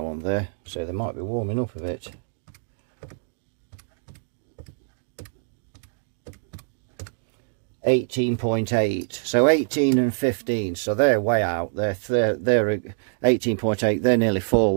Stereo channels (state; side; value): silent; left; digital silence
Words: on there, so they might be warming up a bit. $18.8, so 18 and 15, so they're way out. They're 18.8. They're nearly 4